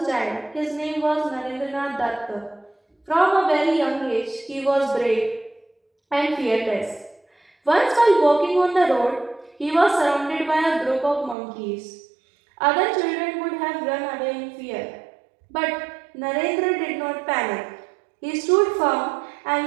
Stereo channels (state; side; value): drops out; left; at 11.4 s